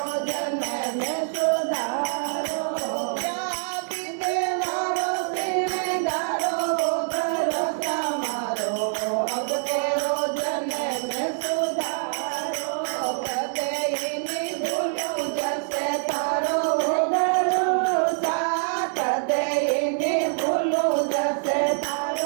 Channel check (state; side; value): silent; left; digital silence